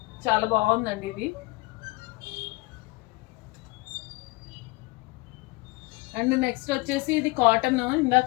చాలా బాగుందండి ఇది. అండ్ నెక్స్ట్ వచ్చేసి ఇది కాటన్, ఇందాక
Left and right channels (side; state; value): right; quieter; 23.3 dB